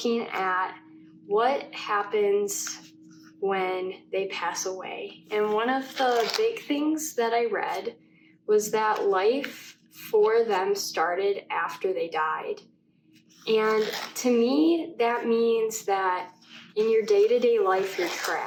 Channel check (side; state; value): both; identical; correlation 1.00